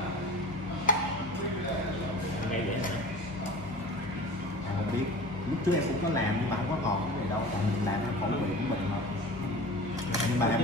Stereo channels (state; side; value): normal; both; correlation 0.38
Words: Ngay vậy hả? Không biết. Lúc trước em cũng có làm nhưng mà không có còn cái gì đâu. Tại mình làm nó khẩu vị của mình mà. Nhưng mà